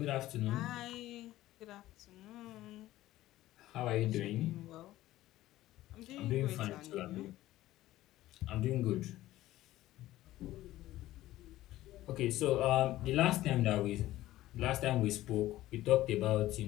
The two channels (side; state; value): right; quieter; 15.5 dB